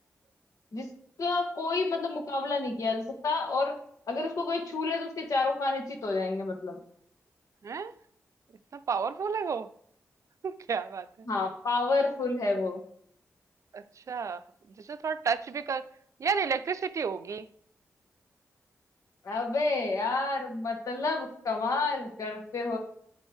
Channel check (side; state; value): both; normal; correlation 0.65